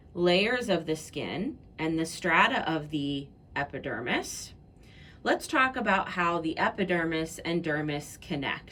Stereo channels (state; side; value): identical; both; correlation 1.00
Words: layers of the skin and the strata of the epidermis, let's talk about how the epidermis and dermis